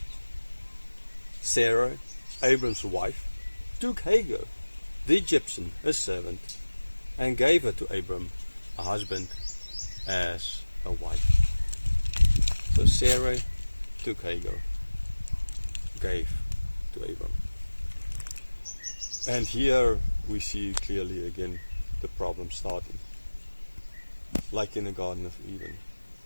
Sarah, Abram's wife, took Hagar, the Egyptian, a servant, and gave her to Abram, a husband, as a wife. So Sarah took Hagar, gave to Abram. And here we see clearly again the problem starting. Like in the Garden of Eden.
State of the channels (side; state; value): both; inverted; correlation -1.00